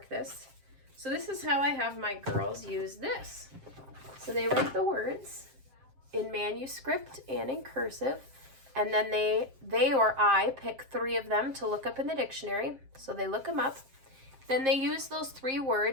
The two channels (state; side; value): late; left; 7.5 ms